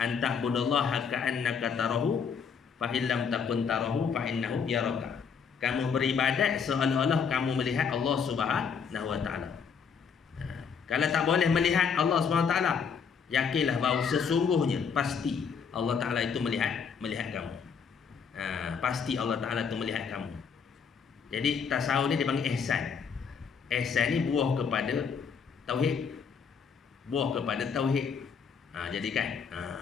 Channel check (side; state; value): right; quieter; 6.3 dB